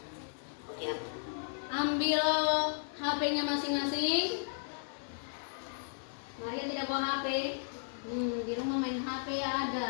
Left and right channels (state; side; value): silent; right; 55 dB below the other